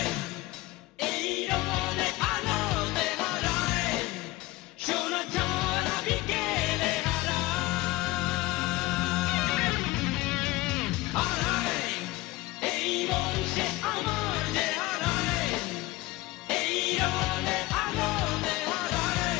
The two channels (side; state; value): right; quieter; 19.4 dB